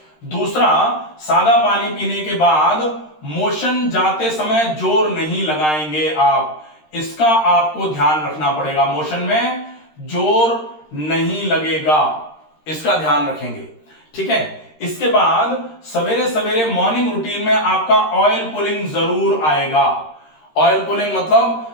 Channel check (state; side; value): late; right; 13 ms